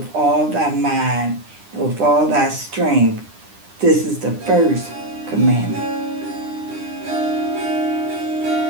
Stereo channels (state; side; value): late; left; 9.9 ms